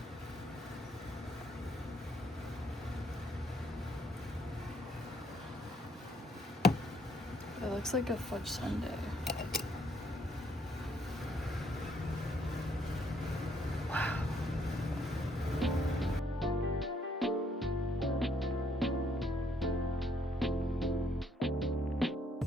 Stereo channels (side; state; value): both; normal; correlation 0.69